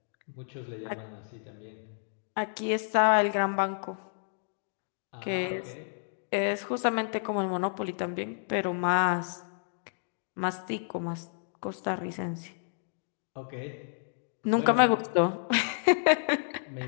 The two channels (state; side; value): silent; right; digital silence